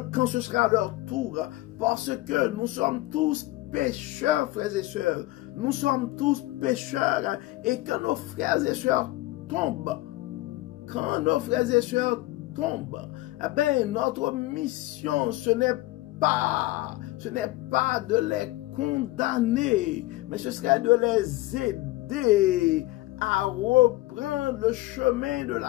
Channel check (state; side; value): quieter; right; 18.6 dB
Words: quand ce sera leur tour, parce que nous sommes tous pécheurs, frères et sœurs. Nous sommes tous pécheurs, et quand nos frères et sœurs tombent, eh bien, notre mission, ce n'est pas de les condamner, mais ce serait de les aider à reprendre le chemin de